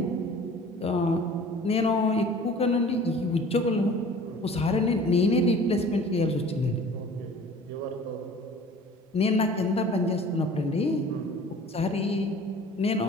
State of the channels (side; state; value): both; normal; correlation 0.46